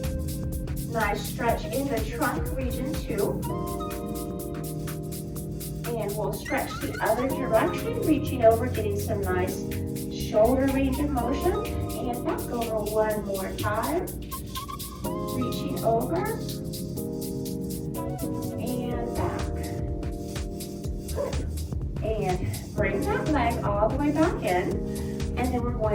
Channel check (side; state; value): both; identical; correlation 1.00